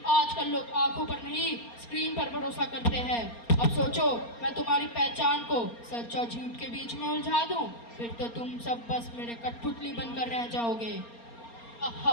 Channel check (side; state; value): right; late; 4.3 ms